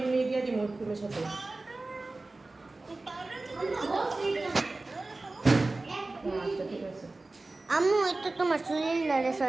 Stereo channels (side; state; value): left; quieter; 3.2 dB